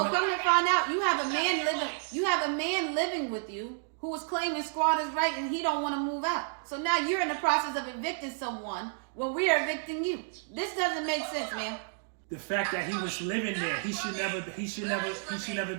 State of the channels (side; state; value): left; silent; digital silence